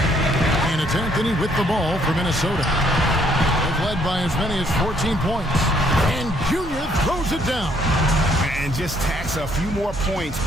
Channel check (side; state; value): both; normal; correlation 0.67